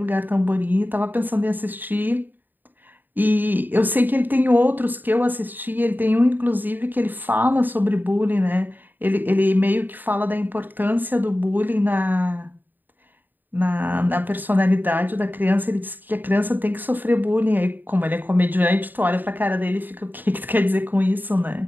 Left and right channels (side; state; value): left; late; 0.090 ms